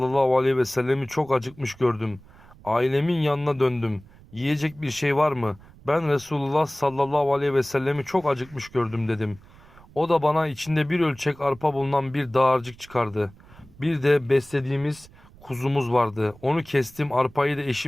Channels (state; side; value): noise; right; rumble, 24 dB below the sound